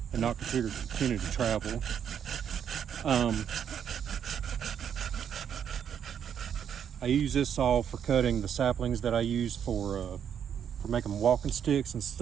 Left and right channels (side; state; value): left; quieter; 8.5 dB